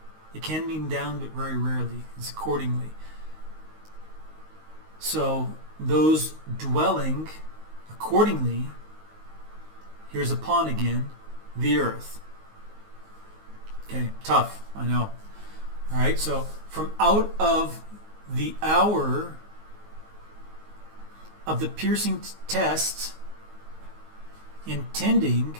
It can mean down, but very rarely. It's accordingly. So, those dwelling accordingly, here's upon again, the earth. Okay, tough, I know. All right, so from out of the hour of the piercing test, intending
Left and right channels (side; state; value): left; late; 19 ms